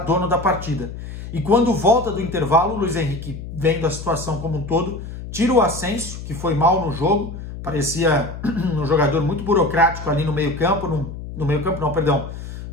da partida. E quando volta do intervalo, o Luis Henrique, vendo a situação como um todo, tira o Asensio, que foi mal no jogo, parecia um jogador muito burocrático ali no meio-campo, no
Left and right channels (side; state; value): left; noise; hum, 10 dB below the sound